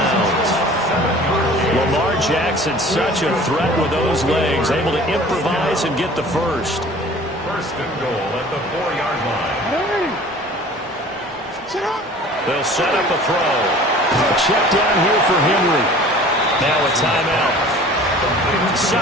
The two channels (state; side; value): normal; both; correlation 0.46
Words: Lamar Jackson, such a threat with those legs, able to improvise and get the first. First and goal at the 4-yard line. They'll set up a throw. A check down here for Henry. Now a timeout.